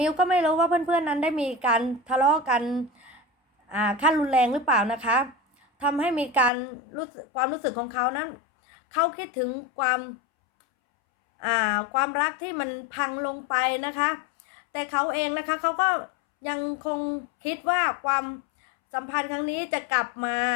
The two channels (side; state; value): right; drops out; at 6.5 s